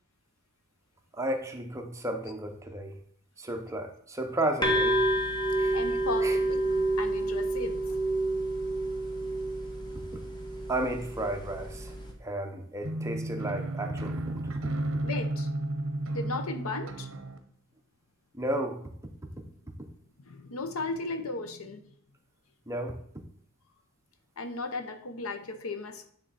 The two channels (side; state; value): both; normal; correlation 0.59